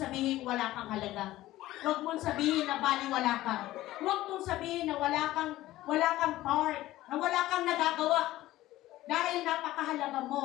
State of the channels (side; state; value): right; quieter; 15.9 dB